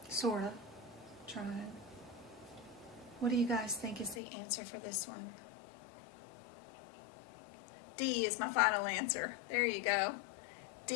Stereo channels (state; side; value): drops out; right; at 4.2 s